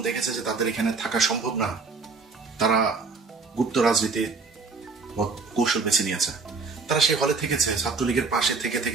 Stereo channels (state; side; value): quieter; left; 4.5 dB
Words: দেখেছে যে তাদের এখানে থাকা সম্ভব না, তারা গুপ্ত রাজনীতি কৌশল বেছে নিয়েছে। তারা সেই হলে থেকেছে, ছাত্রলীগের পাশে থেকে